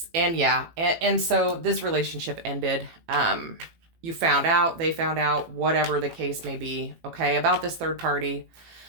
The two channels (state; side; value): late; left; 18 ms